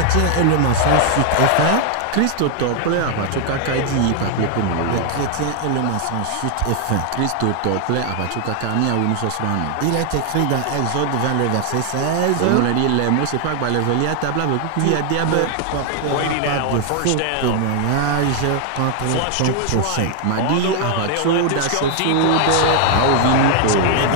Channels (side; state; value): both; different; correlation 0.00